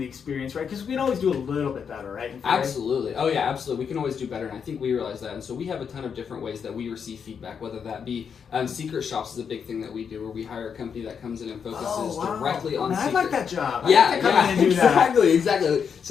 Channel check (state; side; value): quieter; right; 6.9 dB